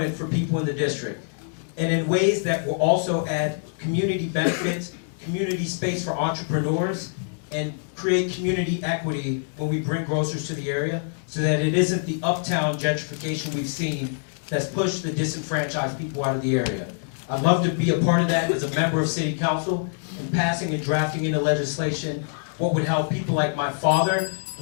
for people in the district. And in ways that will also add community benefits, community space for entrepreneurs, and create community equity when we bring grocers to the area, so that it isn't the uptown gentrification we've seen that's pushed the disenfranchised people out of the area. I'd love to be a part of that as a member of City Council and passing and drafting into legislation what would help people like my father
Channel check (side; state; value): right; silent; 62 dB below the other